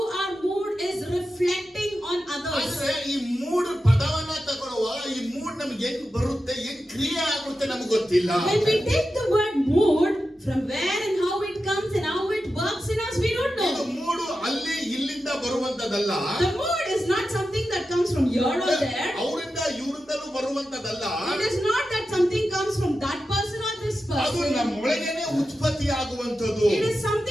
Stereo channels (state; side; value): normal; both; correlation 0.91